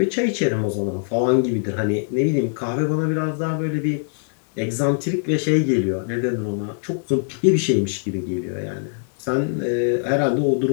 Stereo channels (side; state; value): right; silent; digital silence